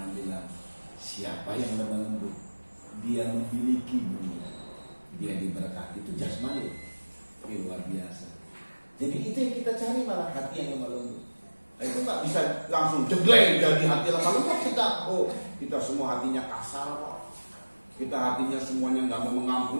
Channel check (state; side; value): inverted; both; correlation -1.00